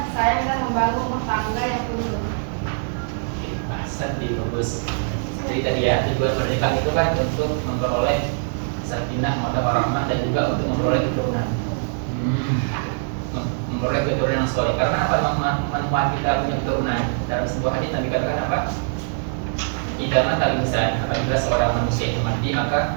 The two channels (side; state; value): left; silent; 55 dB below the other